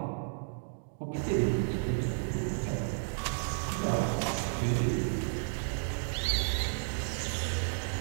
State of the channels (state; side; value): silent; left; digital silence